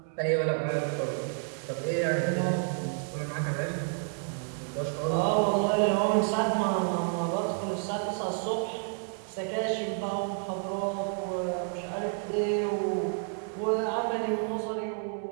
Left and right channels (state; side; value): silent; left; 58 dB below the other